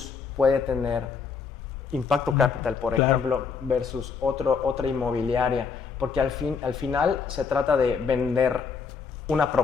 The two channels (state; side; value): quieter; right; 5.6 dB